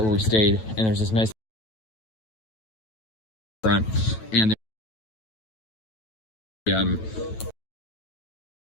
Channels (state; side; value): late; right; 9.1 ms